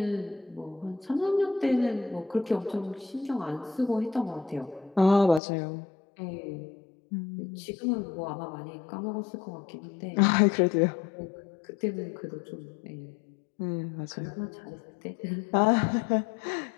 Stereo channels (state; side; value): drops out; right; at 5.4 s